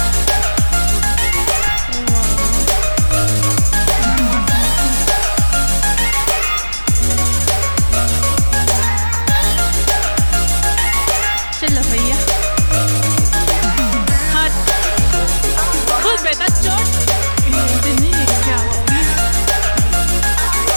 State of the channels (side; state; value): both; inverted; correlation -1.00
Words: चलो भैया हाँ खुद बेटा चोट नहीं है क्या